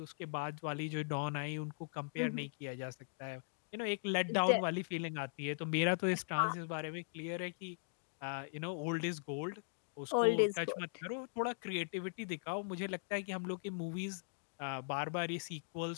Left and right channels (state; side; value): silent; right; digital silence